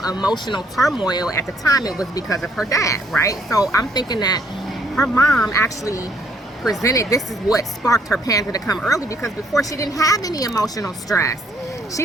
emotional turmoil. At the time, it was because of her dad, right? So I'm thinking that her mom actually presented, this is what sparked her panda to come early, because before she didn't have any emotional stress.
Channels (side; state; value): both; normal; correlation 0.67